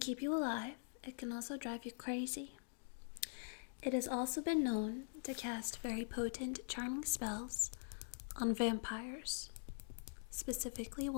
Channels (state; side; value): silent; right; digital silence